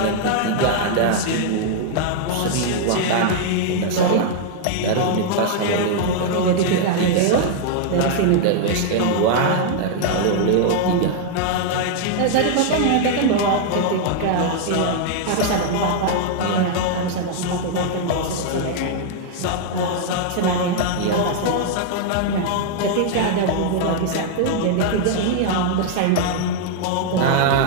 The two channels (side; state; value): both; different; correlation -0.01